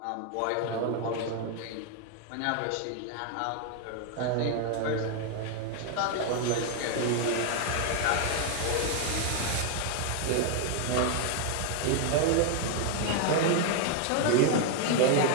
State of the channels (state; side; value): different; both; correlation 0.01